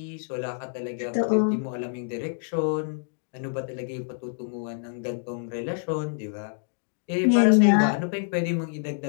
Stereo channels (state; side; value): silent; right; digital silence